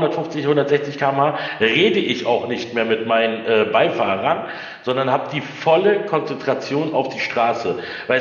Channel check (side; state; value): both; identical; correlation 1.00